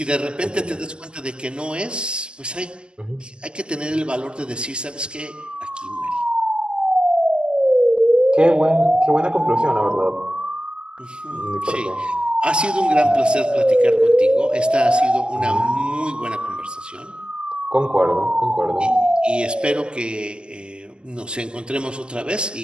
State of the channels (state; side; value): late; left; 0.055 ms